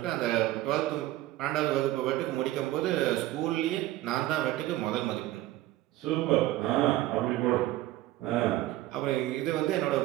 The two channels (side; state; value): left; quieter; 15.9 dB